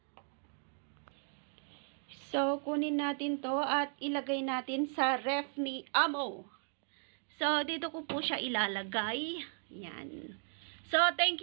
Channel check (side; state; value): left; silent; 54 dB below the other